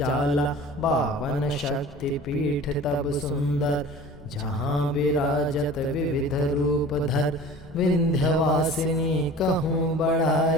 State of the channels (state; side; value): normal; both; correlation 0.41